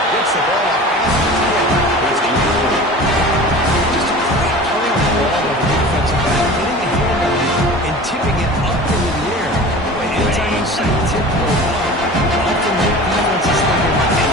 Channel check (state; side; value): normal; both; correlation 0.38